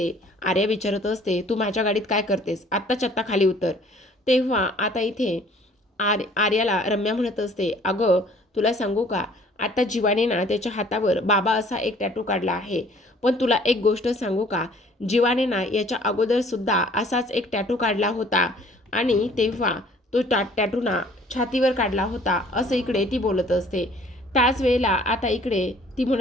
आर्या विचारत असते, तू माझ्या गाडीत काय करतेस? आत्ताच्या आत्ता खाली उतर. तेव्हा आता इथे आर्याला रम्या म्हणत असते, अगं तुला सांगू का, आता जीवाने ना त्याच्या हातावर बाबा असा एक टॅटू काढला आहे. पण तुला एक गोष्ट सांगू का, जीवाने ना याच्या अगोदर सुद्धा असाच एक टॅटू काढला होता आणि तेव्हा तो टॅटू ना छातीवर काढला होता, असं इकडे ती बोलत असते. त्याच वेळेला आता इकडे ती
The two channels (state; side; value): normal; both; correlation 0.55